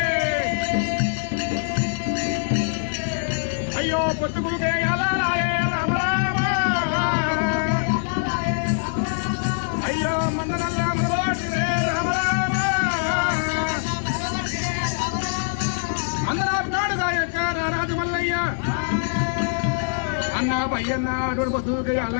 అయ్యో పొత్తుకులుకే అలాయే రామ రామ అయ్యో మందనల్లా పట్టినే రామ రామ మందరాపు నాడుగా యొక్క రాజు మల్లయ్య అన్న పయ్యన్న అటువంటి పొత్తుకే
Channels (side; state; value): right; silent; digital silence